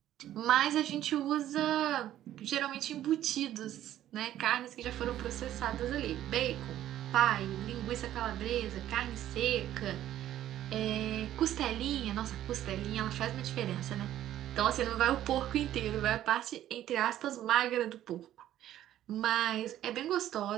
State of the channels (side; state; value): left; quieter; 12.4 dB